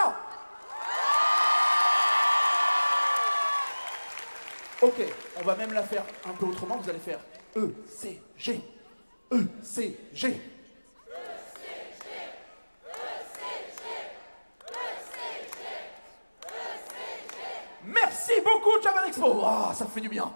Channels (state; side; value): inverted; both; correlation -1.00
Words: Ok, on va même la faire un peu autrement, vous allez faire ECG, ECG. Merci beaucoup, Japan Expo. Ah, ça fait du bien.